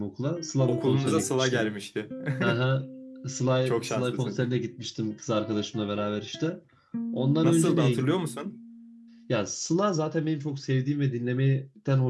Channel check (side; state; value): both; identical; correlation 1.00